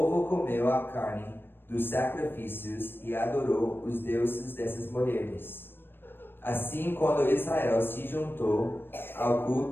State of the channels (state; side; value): late; right; 0.099 ms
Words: comeu a carne dos sacrifícios e adorou os deuses dessas mulheres. Assim, quando Israel se juntou ao